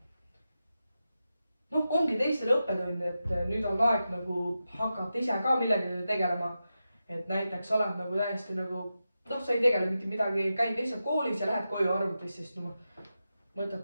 ongi teistele õppetund, et nüüd on aeg nagu hakata ise ka millegagi tegelema. Et näiteks oled nagu täiesti nagu, sa ei tegele mitte midagi, käid lihtsalt koolis ja lähed koju arvutis, sest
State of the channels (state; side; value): inverted; both; correlation -0.91